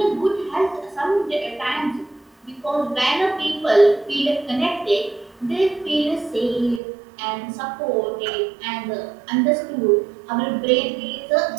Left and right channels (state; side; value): drops out; left; at 6.8 s